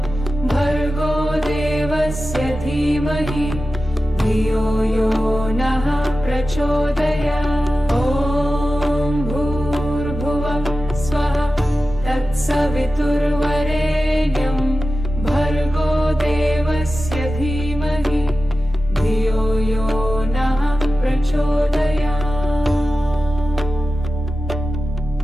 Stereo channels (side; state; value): both; normal; correlation 0.94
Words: भर्गो देवस्य धीमहि धियो यो नः प्रचोदयात्। ॐ भूर्भुवः स्वः तत्सवितुर्वरेण्यं